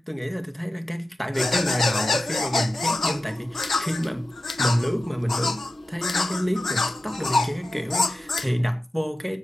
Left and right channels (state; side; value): normal; both; correlation 0.93